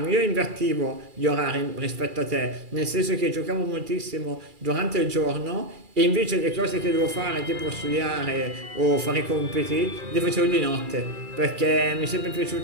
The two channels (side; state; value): left; late; 2.4 ms